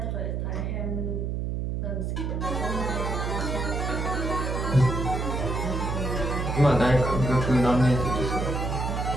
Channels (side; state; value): right; noise; hum, 1 dB below the sound